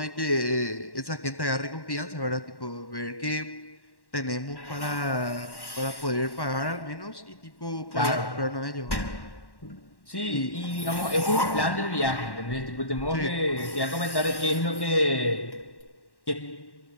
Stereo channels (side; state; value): right; late; 1.1 ms